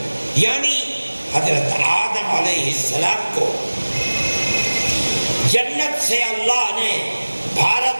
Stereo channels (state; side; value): inverted; both; correlation -1.00